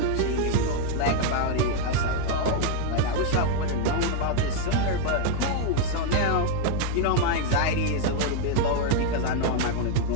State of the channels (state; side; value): different; both; correlation 0.00